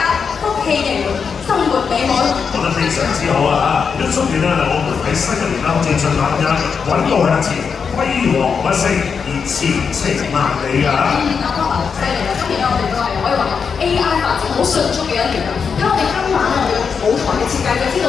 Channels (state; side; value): quieter; right; 6.0 dB